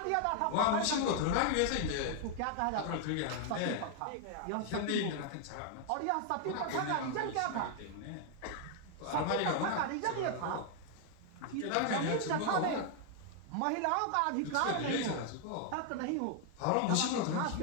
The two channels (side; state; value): both; different; correlation 0.00